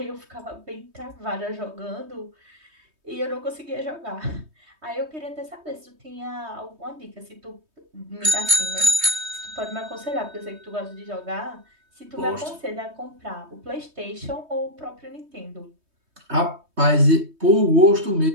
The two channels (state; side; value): late; left; 3.2 ms